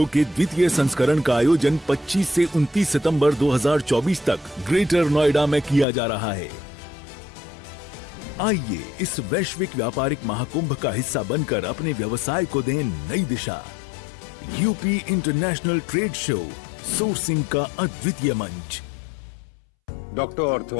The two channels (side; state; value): right; drops out; at 5.9 s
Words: के द्वितीय संस्करण का आयोजन 25 से 29 सितंबर 2024 तक ग्रेटर नोएडा में किया जा रहा है। आइए इस वैश्विक व्यापारिक महाकुंभ का हिस्सा बनकर अपने व्यवसाय को दें नई दिशा। UP international trade show, sourcing का अद्वितीय मंच। डॉक्टर ऑर्थो